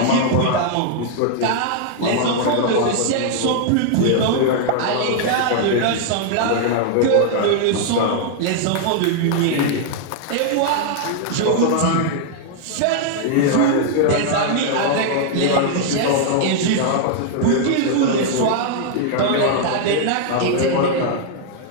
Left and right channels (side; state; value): both; different; correlation 0.00